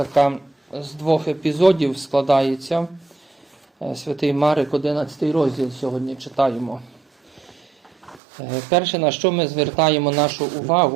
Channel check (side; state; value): left; drops out; at 8.2 s